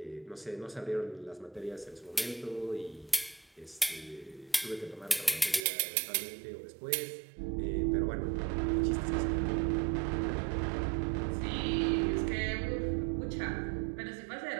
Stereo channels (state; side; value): drops out; left; at 5.6 s